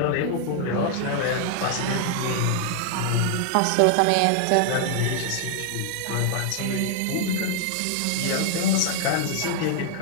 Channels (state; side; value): different; both; correlation 0.00